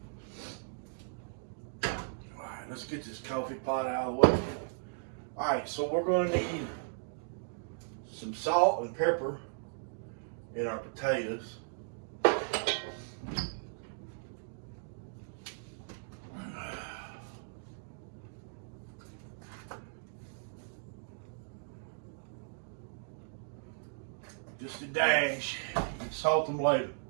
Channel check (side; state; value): left; silent; digital silence